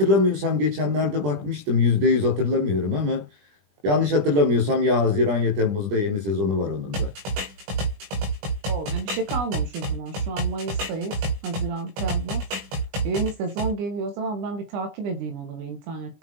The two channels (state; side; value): late; left; 20 ms